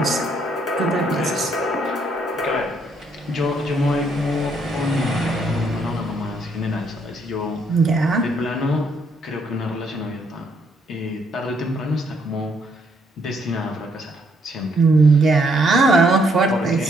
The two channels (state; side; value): normal; both; correlation 0.71